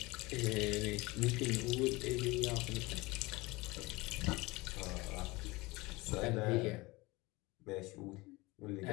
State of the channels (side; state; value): right; quieter; 22.5 dB